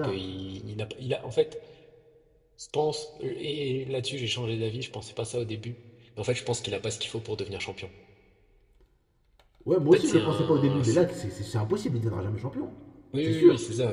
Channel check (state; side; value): identical; both; correlation 1.00